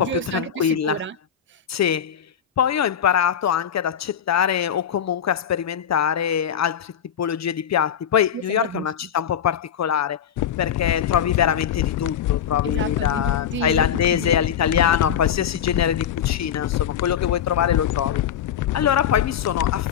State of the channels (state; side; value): quieter; right; 8.9 dB